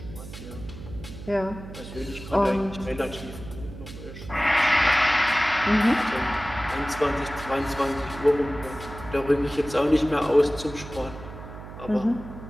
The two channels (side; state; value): right; noise; hum, 13 dB below the sound